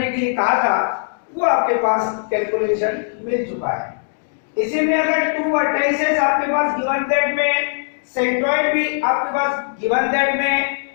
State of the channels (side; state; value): right; silent; digital silence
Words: के लिए कहा था वो आपके पास कैलकुलेशन मिल चुका है। इसी में अगर 2 वर्टिसेस आपके पास गिवन दैट में, सेंट्रॉइड भी आपके पास गिवन दैट में,